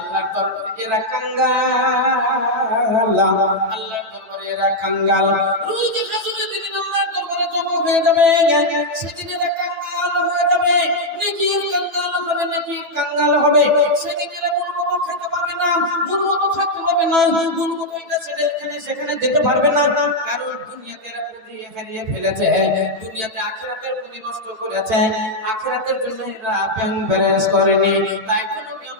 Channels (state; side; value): late; left; 9.1 ms